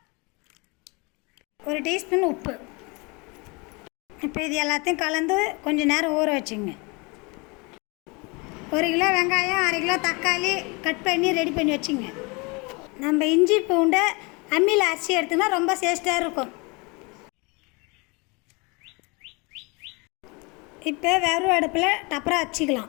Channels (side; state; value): right; quieter; 28.7 dB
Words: 1 டீஸ்பூன் உப்பு. இப்போ இது எல்லாத்தையும் கலந்து கொஞ்சம் நேரம் ஊற வச்சுங்க. 1 கிலோ வெங்காயம், 1/2 கிலோ தக்காளி கட் பண்ணி ரெடி பண்ணி வச்சுங்க. நம்ம இஞ்சி பூண்டை அம்மியில் அரைச்சி எடுத்தோம்னா ரொம்ப டேஸ்ட்டாக இருக்கும். இப்போ வெறும் அடுப்பில் டப்பராக வச்சுக்கலாம்.